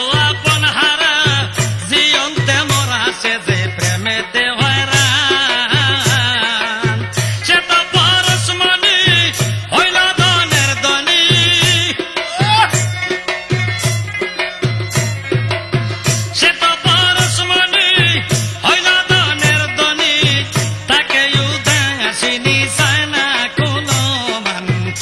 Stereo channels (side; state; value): both; identical; correlation 1.00